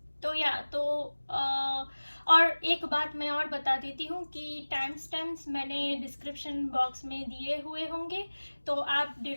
और एक बात मैं और बता देती हूँ कि टाइम स्टैम्प्स मैंने डिस्क्रिप्शन बॉक्स में दिए हुए होंगे, तो आप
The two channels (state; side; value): inverted; both; correlation -1.00